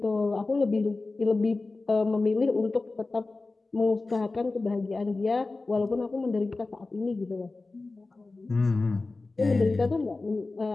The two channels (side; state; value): right; quieter; 3.5 dB